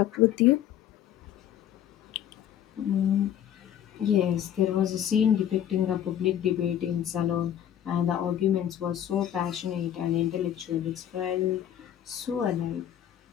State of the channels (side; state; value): right; quieter; 10.4 dB